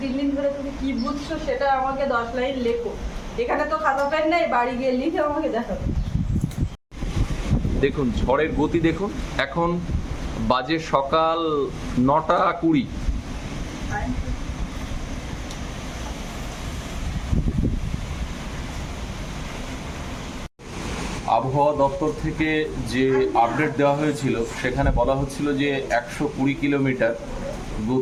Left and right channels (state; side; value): identical; both; correlation 1.00